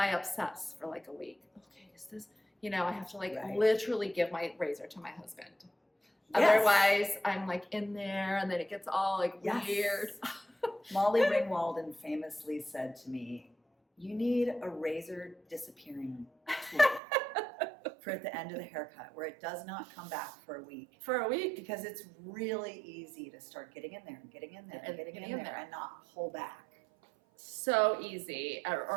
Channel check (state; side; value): drops out; left; at 17.0 s